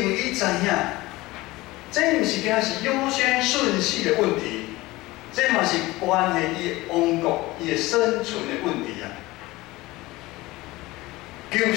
为伊知影，这毋是惊是优先顺序的问题，这嘛是关系伊的王国、伊的生存的问题啊。求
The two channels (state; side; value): quieter; right; 19.9 dB